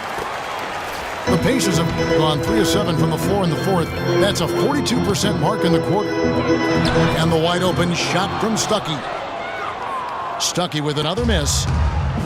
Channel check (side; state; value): both; identical; correlation 1.00